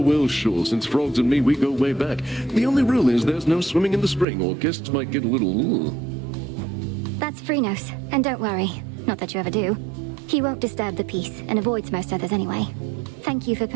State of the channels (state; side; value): drops out; left; at 4.2 s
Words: well, sure. Since frogs and me, we go way back. The only rule is there's no swimming in the spring, or guests might get a little... That's Phrynos. And don't worry. Not that you ever do. He won't disturb the peace, and avoids most others anyway. Thank you for